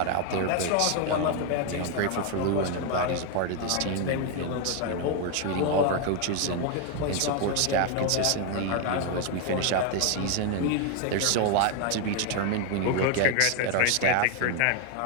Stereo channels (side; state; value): both; different; correlation 0.01